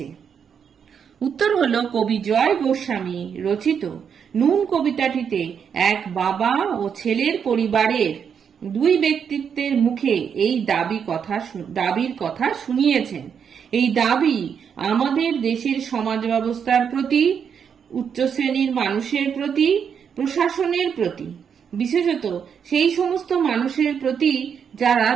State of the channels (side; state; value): left; quieter; 7.3 dB